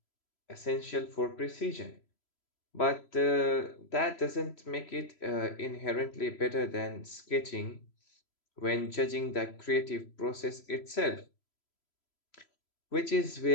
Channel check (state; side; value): late; right; 3.0 ms